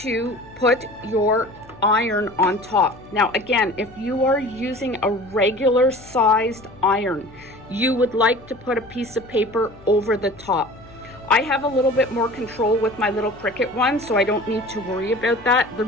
put your iron on top. Now again, if you are using a regular sized iron, you would like to put a piece of paper over the top. I have a little bit more control with my little Cricut one, so I don't need to worry about that. The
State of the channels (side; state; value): left; noise; hum, 23 dB below the sound